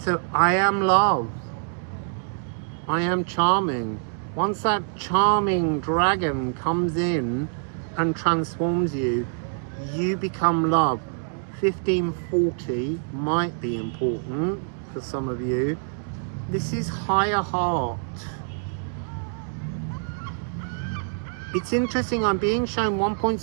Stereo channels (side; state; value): left; silent; 62 dB below the other